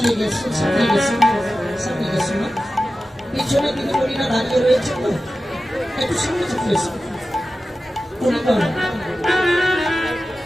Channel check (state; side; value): normal; both; correlation 0.94